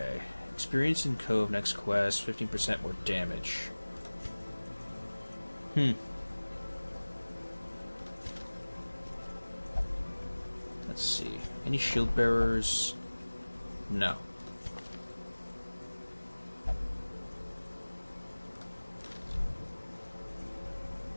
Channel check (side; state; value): both; inverted; correlation -1.00